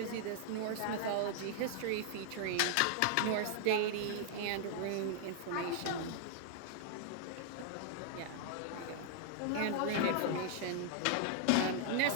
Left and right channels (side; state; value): both; different; correlation -0.01